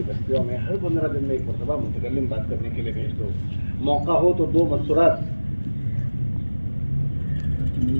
بستیوں میں ہر 15 دن میں ایک مرتبہ متکلم بات کرنے کے لیے بھیج دو. موقع ہو تو 2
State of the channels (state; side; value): inverted; both; correlation -1.00